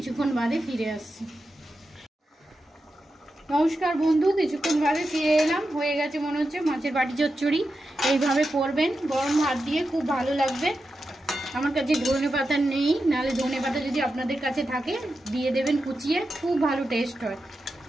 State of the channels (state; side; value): normal; both; correlation 0.90